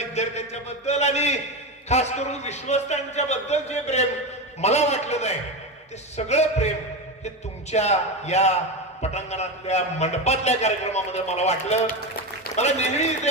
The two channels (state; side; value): normal; both; correlation 0.17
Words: बद्दल आणि खास करून विश्वस्तांच्या बद्दल जे प्रेम मला वाटलं नाही, ते सगळं प्रेम हे तुमच्या या पटांगणातल्या मंडपातल्या कार्यक्रमामध्ये मला वाटलं. मला नेहमी इथे